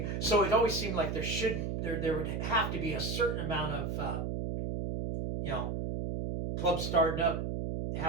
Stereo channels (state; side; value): noise; right; hum, 2 dB below the sound